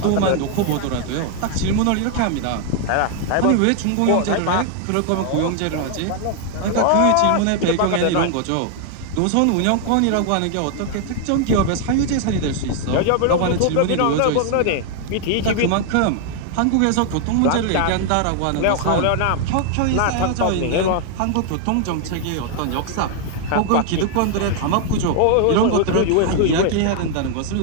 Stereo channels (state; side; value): different; both; correlation 0.00